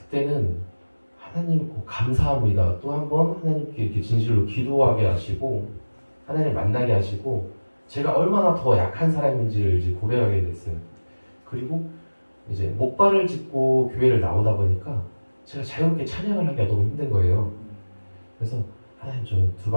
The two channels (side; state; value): both; inverted; correlation -1.00